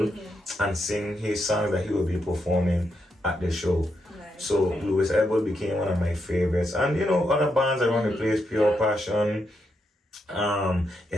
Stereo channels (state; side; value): normal; both; correlation 0.82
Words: and sing his songs that he would be performing at the show. Nice. So Okay. Louis Elwood became one of my favorites, and you know other bands around the place, Pure Yeah. Passion.